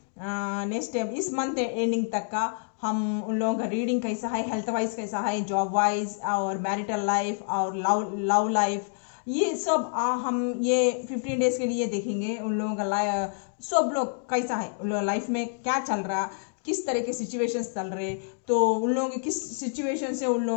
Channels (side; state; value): right; silent; digital silence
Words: नेक्स्ट इस मंथ एंडिंग तक का हम उन लोगों का रीडिंग कैसा है, हेल्थ वाइज कैसा है, जॉब वाइज और मैरिटल लाइफ और लव लाइफ, ये सब हम ये 15 डेज के लिए देखेंगे। उन लोगों का सब लोग कैसा है, उन लोगों लाइफ में क्या चल रहा, किस तरह के सिचुएशंस चल रहे, तो उन लोगों के किस सिचुएशन से उन